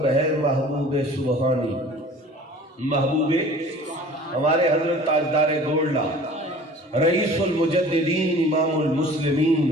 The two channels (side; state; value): both; normal; correlation 0.45